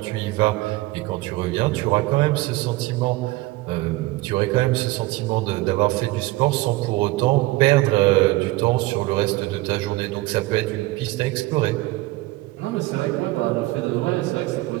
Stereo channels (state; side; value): quieter; left; 19.9 dB